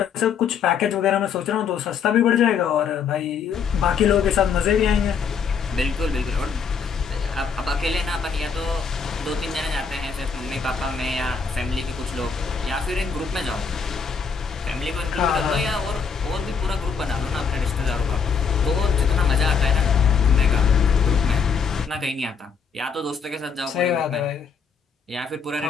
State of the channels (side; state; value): right; quieter; 6.1 dB